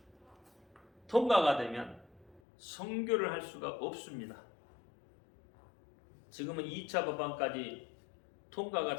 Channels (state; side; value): drops out; right; at 2.4 s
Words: 통과가 되면 선교를 할 수가 없습니다. 지금은 2차 법안까지 통과가